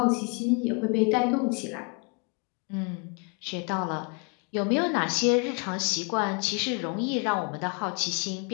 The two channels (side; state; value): right; quieter; 34.5 dB